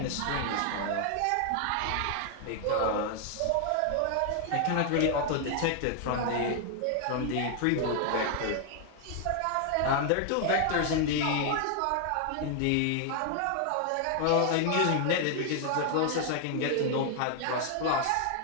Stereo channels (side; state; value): both; different; correlation 0.00